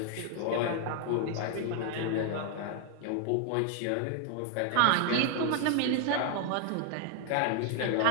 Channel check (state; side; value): different; both; correlation 0.00